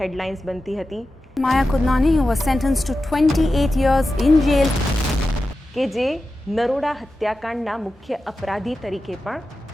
બનતી હતી. Maya Kodnani, who was sentenced to 28 years in jail. કે જે નરોડા હત્યાકાંડના મુખ્ય અપરાધી તરીકે પણ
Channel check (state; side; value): normal; both; correlation 0.92